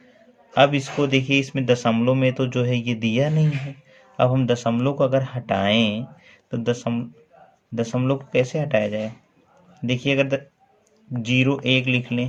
अब इसको देखिए इसमें दशमलव में तो जो है ये दिया नहीं है। अब हम दशमलव को अगर हटाएं तो दशमलव को कैसे हटाया जाए। देखिए अगर 0 1 लिख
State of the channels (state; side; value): identical; both; correlation 1.00